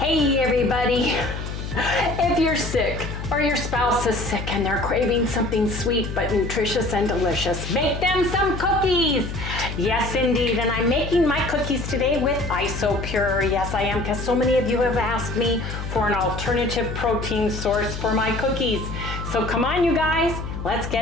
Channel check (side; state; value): left; noise; hum, 7 dB below the sound